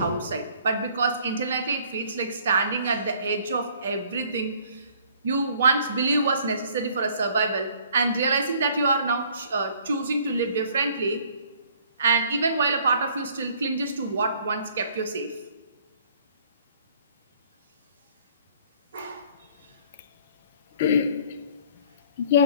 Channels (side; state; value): both; inverted; correlation -0.59